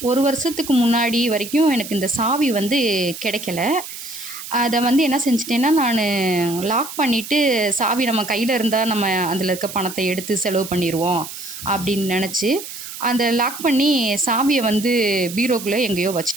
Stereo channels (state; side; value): noise; right; hiss, 11 dB below the sound